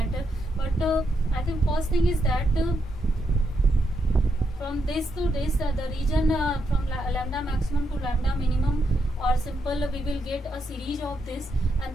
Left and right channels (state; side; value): normal; both; correlation 0.81